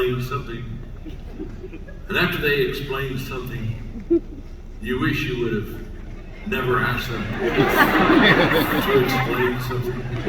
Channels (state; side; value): identical; both; correlation 1.00